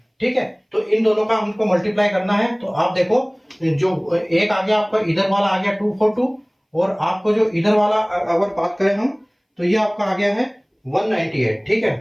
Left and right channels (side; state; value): both; identical; correlation 1.00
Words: ठीक है। तो इन दोनों का हमको मल्टीप्लाई करना है, तो आप देखो जो एक आ गया आपका इधर वाला आ गया 242, और आपको जो इधर वाला अगर बात करें हम तो ये आपका आ गया है 198, ठीक